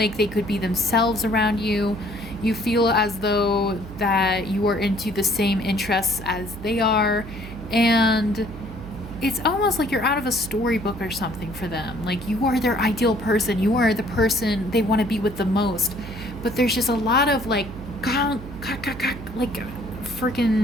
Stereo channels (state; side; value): noise; right; hum, 13 dB below the sound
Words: they could be themselves around you. You feel as though that you are into the same interests as they are. And it's almost like you're out of a storybook or something for them. Like you are their ideal person. You are the person they want to be with the most. But there's just a lot of like